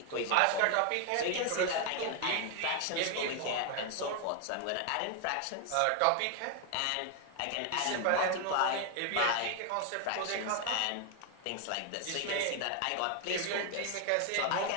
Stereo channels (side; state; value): both; different; correlation 0.01